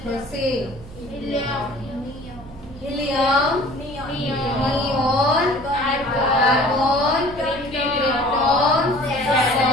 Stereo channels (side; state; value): both; normal; correlation 0.48